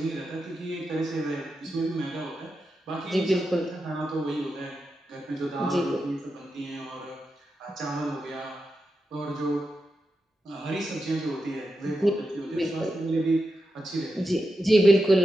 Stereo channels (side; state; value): both; normal; correlation 0.88